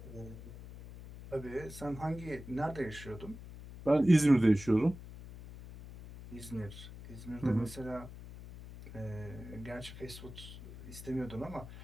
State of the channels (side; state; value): left; noise; hum, 14 dB below the sound